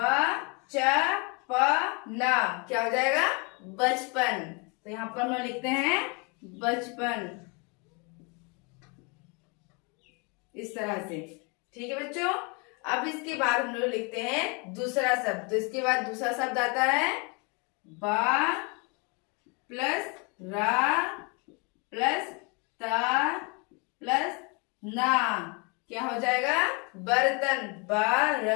च प ना क्या हो जाएगा? बचपन। तो यहाँ पर हम लोग लिखते हैं बचपन, इस तरह से। ठीक है बच्चों। अब इसके बाद हम लोग लिखते हैं दूसरा शब्द। तो इसके बाद दूसरा शब्द आता है बा प्लस रा प्लस ता प्लस ना। क्या हो जाएगा? बर्तन।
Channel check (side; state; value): right; quieter; 31.9 dB